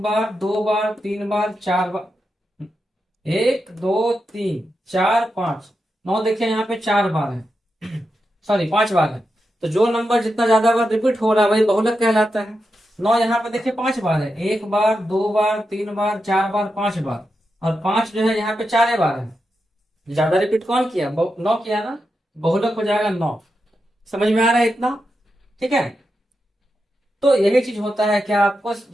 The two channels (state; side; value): normal; both; correlation 0.88